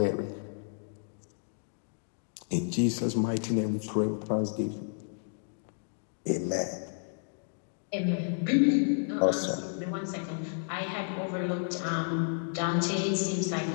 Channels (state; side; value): silent; right; digital silence